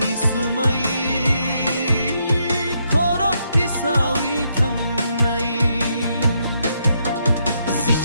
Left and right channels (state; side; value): inverted; both; correlation -0.77